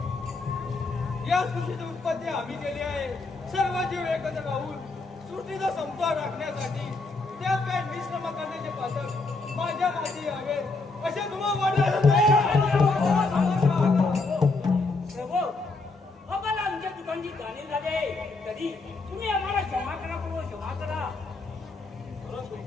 या सृष्टीची उत्पत्ती आम्ही केली आहे. सर्व जीव एकत्र राहून सृष्टीचा समतोल राखण्यासाठी त्यात काय निश्रम करण्याचे पातक माझ्या माती हवेत असे तुम्हाला वाटत प्रभू, आम्हाला आमच्या चुकांची जाणीव झाली आहे. तरी तुम्ही आम्हाला क्षमा करा प्रभू, क्षमा करा.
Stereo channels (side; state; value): right; quieter; 3.6 dB